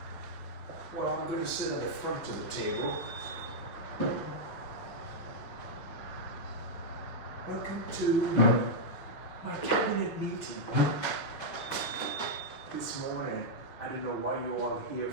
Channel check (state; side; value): late; right; 6.4 ms